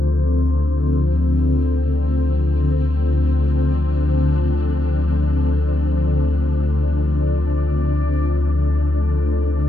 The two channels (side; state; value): right; late; 0.69 ms